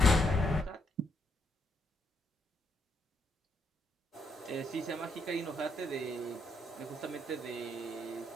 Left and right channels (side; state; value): both; normal; correlation 0.75